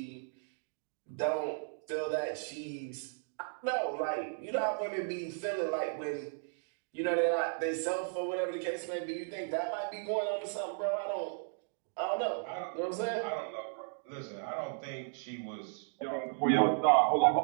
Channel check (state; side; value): silent; left; digital silence